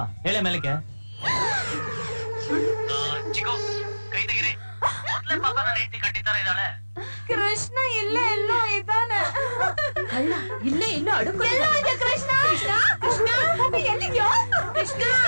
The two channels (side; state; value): both; inverted; correlation -1.00